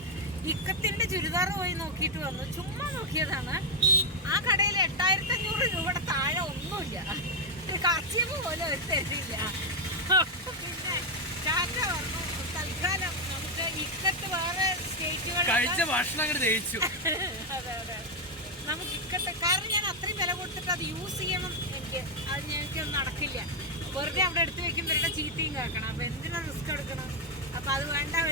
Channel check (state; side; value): normal; both; correlation 0.02